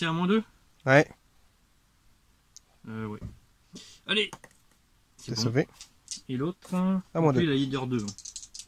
à -2. Ouais. Ouais. Allez. C'est bon. Sauvé. Et l'autre, À moi lui, deux. la leader 2.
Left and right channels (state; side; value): identical; both; correlation 1.00